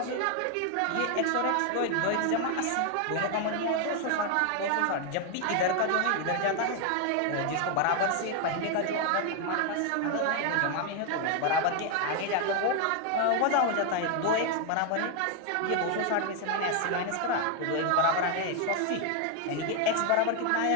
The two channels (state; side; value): different; both; correlation 0.01